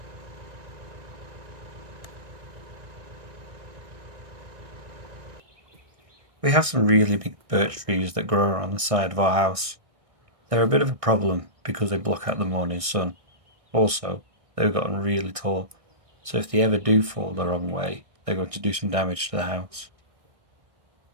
We have some really big birch trees that grow around the side of our house. They're a bit of a problem because they block out the morning sun. Also, they've gotten really tall, so if they ever do fall the wrong way, they're going to do some damage to the house.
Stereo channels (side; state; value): left; late; 1.6 ms